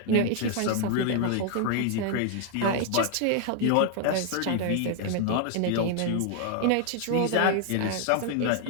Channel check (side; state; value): both; different; correlation 0.00